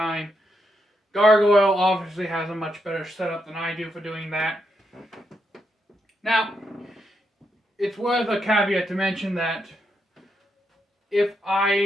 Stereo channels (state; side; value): normal; both; correlation 0.81